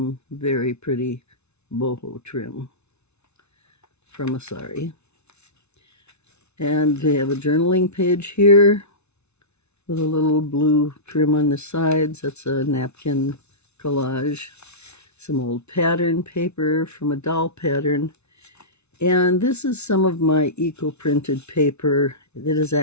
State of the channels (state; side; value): late; right; 0.81 ms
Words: very pretty boho trim from a sari. And we have a journaling page here with a little blue trim on the sides. That's a napkin collage. Some old pattern paper from a doll pattern. And this is some of my eco-printed paper. It is